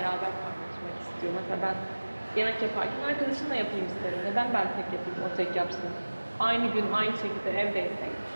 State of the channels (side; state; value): both; inverted; correlation -1.00